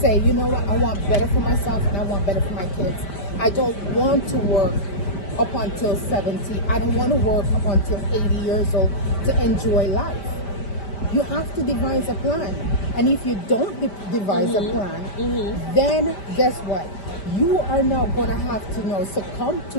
you know what, I want better for myself and I want better for my kids. I don't want to work up until 70. I don't want to work up until 80 years old to enjoy life. You have to devise a plan. And if you don't devise a plan, then guess what? You are now going to have to succumb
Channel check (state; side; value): late; right; 5.1 ms